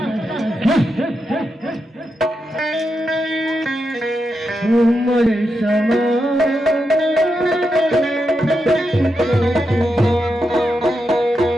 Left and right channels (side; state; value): both; normal; correlation 0.86